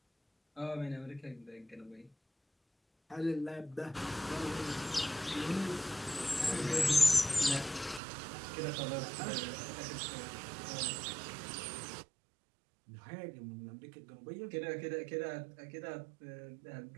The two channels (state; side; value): drops out; left; at 8.0 s